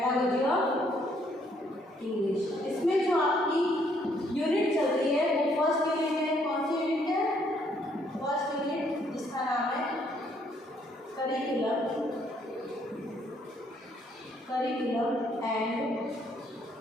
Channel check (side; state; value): both; normal; correlation 0.68